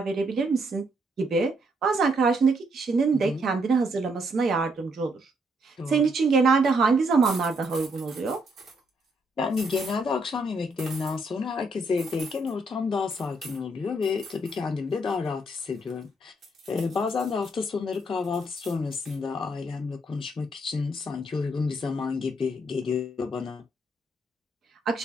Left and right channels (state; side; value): normal; both; correlation 0.73